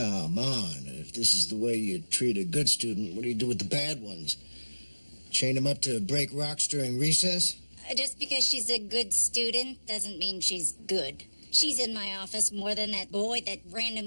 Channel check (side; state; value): both; inverted; correlation -1.00